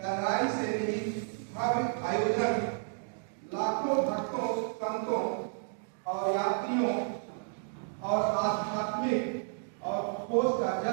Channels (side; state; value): left; silent; digital silence